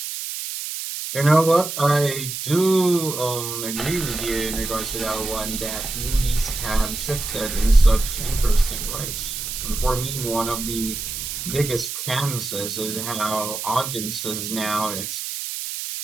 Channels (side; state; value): right; noise; hiss, 5 dB below the sound